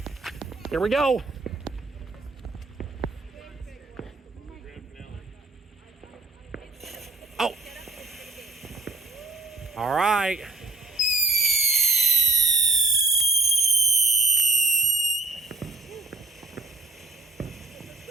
here we go. Oh. All right.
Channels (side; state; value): left; quieter; 3.4 dB